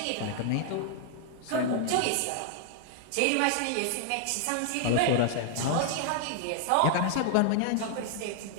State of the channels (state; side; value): different; both; correlation 0.00